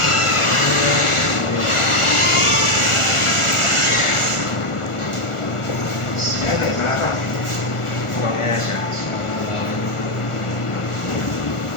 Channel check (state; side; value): late; right; 1.4 ms